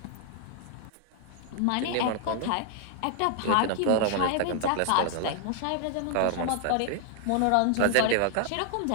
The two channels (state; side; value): different; both; correlation 0.00